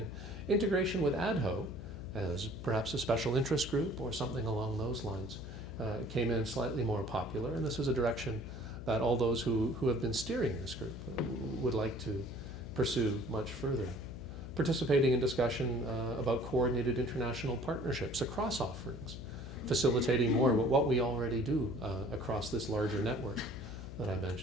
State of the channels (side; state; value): left; noise; hum, 10 dB below the sound